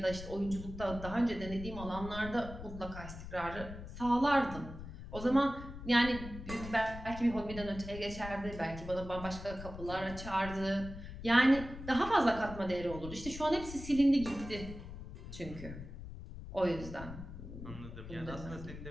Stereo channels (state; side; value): noise; left; rumble, 11 dB below the sound